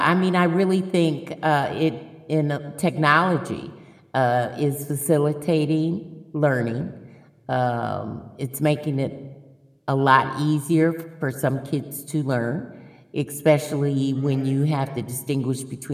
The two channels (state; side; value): identical; both; correlation 1.00